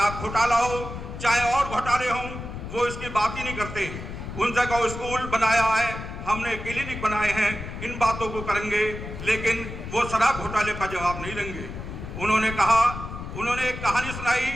घोटाला हो, चाहे और घोटाले हों, वो इसकी बात ही नहीं करते। उन जगह स्कूल बनाया है, हमने क्लिनिक बनाए हैं, इन बातों को करेंगे, लेकिन वो शराब घोटाले का जवाब नहीं देंगे। उन्होंने एक कहानी सुनाई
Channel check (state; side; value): noise; left; rumble, 9 dB below the sound